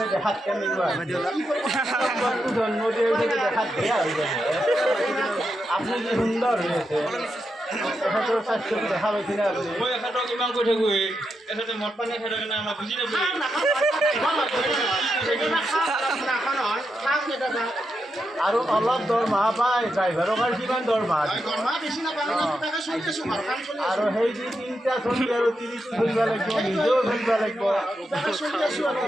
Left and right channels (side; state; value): both; normal; correlation 0.85